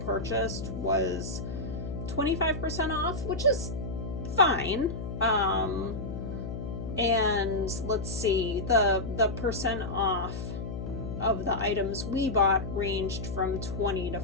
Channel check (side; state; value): left; noise; hum, 6 dB below the sound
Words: was 25% off, which is fine. And let's see, the percent off of the items we bought ranged from 20 to